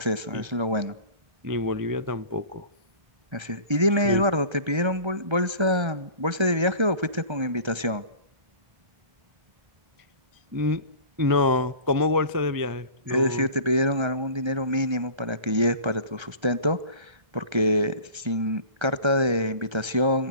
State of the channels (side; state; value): left; late; 1.3 ms